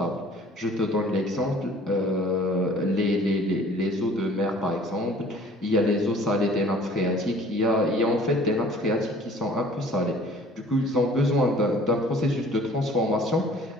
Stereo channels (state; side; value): normal; both; correlation 0.51